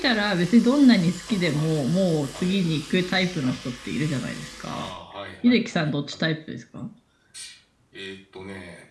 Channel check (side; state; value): both; identical; correlation 1.00